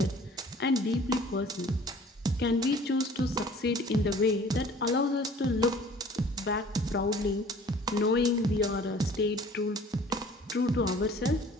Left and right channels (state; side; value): normal; both; correlation 0.50